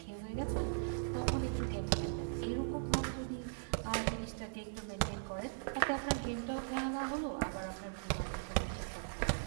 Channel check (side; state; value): left; silent; digital silence